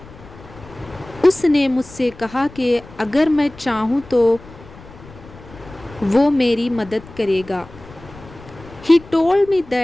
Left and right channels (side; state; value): left; noise; rumble, 20 dB below the sound